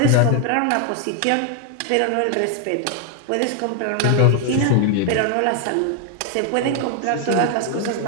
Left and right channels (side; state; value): both; different; correlation 0.00